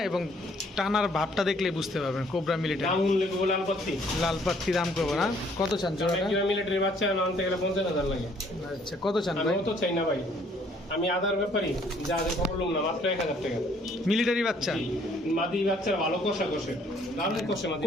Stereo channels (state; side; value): normal; both; correlation 0.62